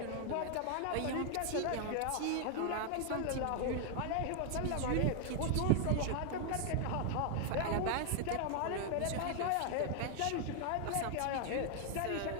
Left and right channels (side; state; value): both; different; correlation 0.00